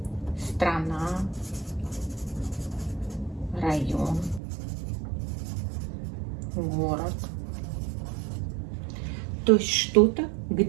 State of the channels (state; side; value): drops out; left; at 4.4 s